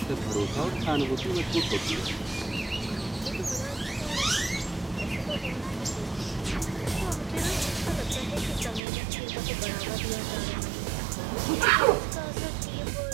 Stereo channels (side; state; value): left; drops out; at 8.8 s